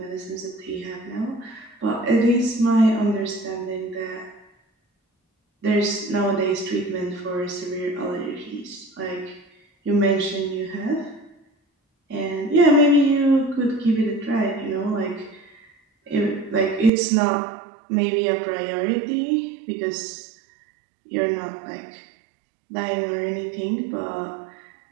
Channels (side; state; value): left; drops out; at 16.9 s